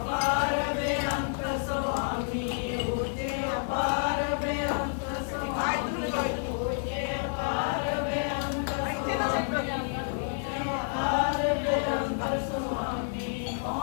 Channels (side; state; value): right; silent; digital silence